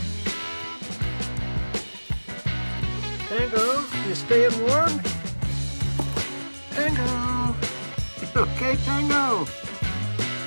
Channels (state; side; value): inverted; both; correlation -1.00